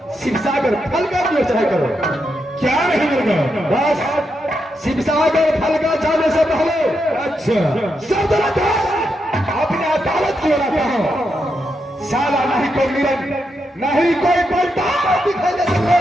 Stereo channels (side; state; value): both; normal; correlation 0.83